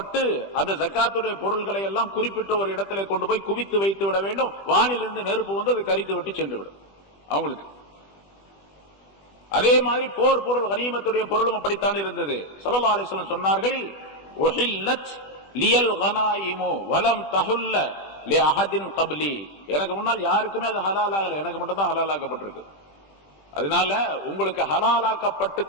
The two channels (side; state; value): right; late; 20 ms